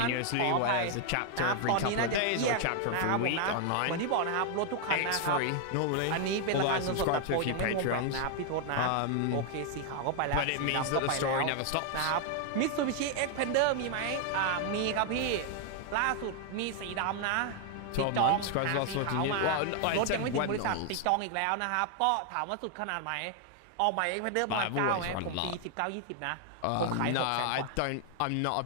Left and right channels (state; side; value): different; both; correlation 0.00